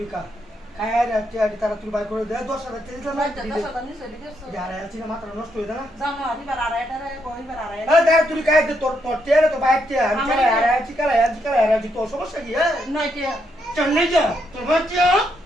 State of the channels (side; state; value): both; normal; correlation 0.78